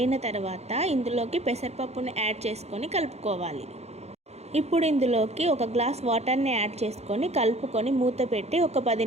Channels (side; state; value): left; late; 0.31 ms